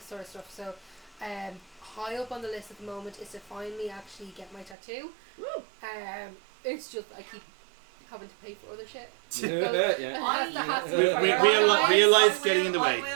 sort of stuff. So high up on the list at the moment is to finally actually get my tattoo. It's just I keep having to pay for other shit. Yeah. Real life getting in the way. I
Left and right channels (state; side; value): drops out; left; at 4.8 s